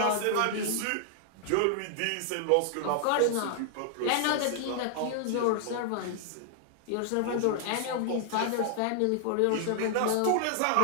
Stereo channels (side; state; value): both; different; correlation 0.00